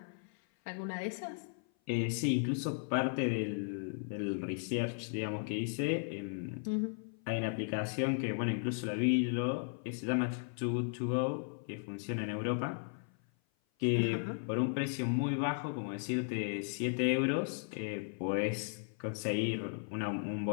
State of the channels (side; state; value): right; silent; 54 dB below the other